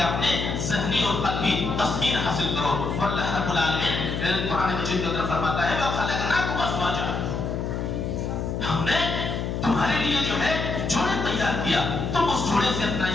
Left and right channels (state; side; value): noise; left; hum, 2 dB below the sound